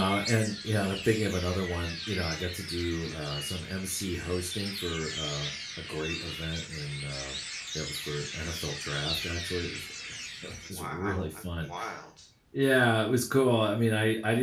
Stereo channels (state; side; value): identical; both; correlation 1.00